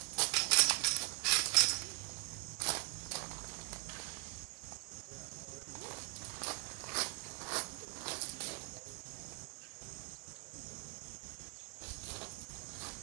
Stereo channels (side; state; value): left; quieter; 32.0 dB